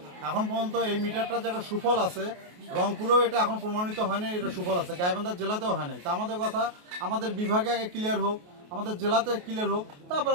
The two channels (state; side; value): late; left; 28 ms